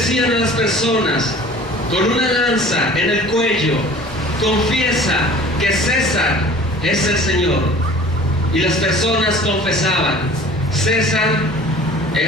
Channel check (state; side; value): normal; both; correlation 0.45